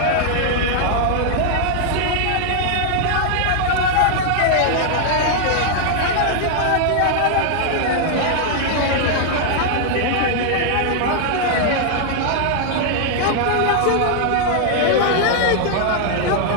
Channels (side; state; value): both; different; correlation 0.00